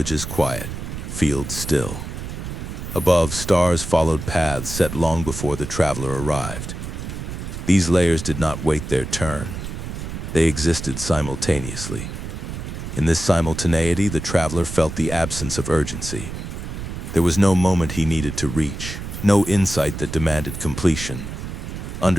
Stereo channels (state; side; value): noise; right; rumble, 7 dB below the sound